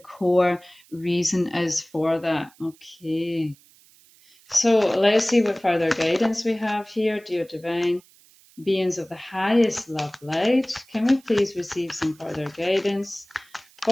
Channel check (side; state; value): right; noise; hiss, 28 dB below the sound